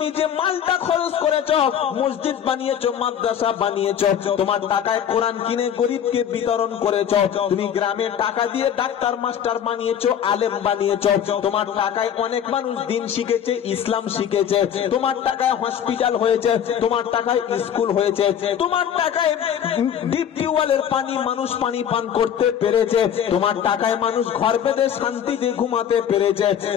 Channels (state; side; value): quieter; right; 9.0 dB